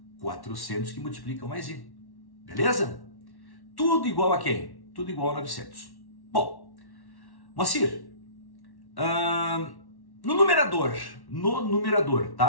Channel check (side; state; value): right; late; 1.1 ms